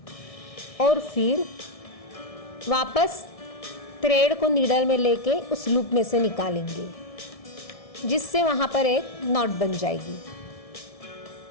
और फिर वापस थ्रेड को नीडल में लेके उस लूप में से निकालेंगे, जिससे वहाँ पर एक नॉट बन जाएगी।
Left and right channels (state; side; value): late; right; 1.6 ms